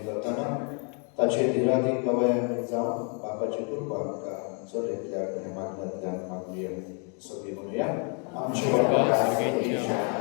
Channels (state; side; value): quieter; right; 39.0 dB